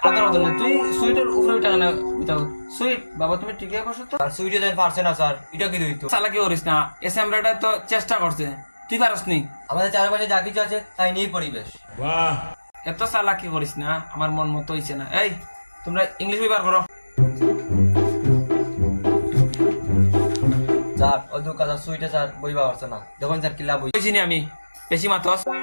আদর হতো না তুই সুইটের উপরে উঠা কেন উঠাও সুইট বাবা তুমি ঠিকই বসো তো আর সুইটে দেন পারছে না স্যার এটা কি দইতো চালাকি করিস না এসএমরাটা তো চেষ্টা করছে তুই পারস নি আমাদের চারপাশে যা কিছু আছে তাই নিয়ে পরিবেশ এত চালাকি করিস না আমার মন মতো হইছে না। এই তোমরা ইংলিশ ব্যবহার করো। স্যার ও দু কাজ সুইটে স্যার বইবা পারছে না দেখুন স্যার কি লাভ হই বুঝিনি আমি বেশি মাতস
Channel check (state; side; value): inverted; both; correlation -1.00